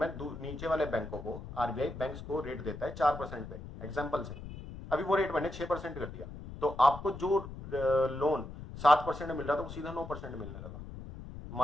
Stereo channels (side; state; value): left; noise; rumble, 11 dB below the sound